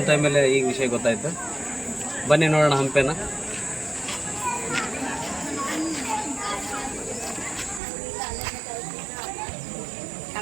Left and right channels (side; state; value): left; drops out; at 7.8 s